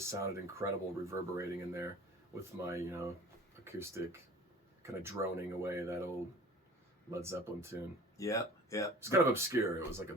sounded incredible reverberating in there with my, acoustic kind of droning away that old Led Zeppelin tune. Yeah. It's kind of obscure. It was like a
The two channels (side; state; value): both; normal; correlation 0.43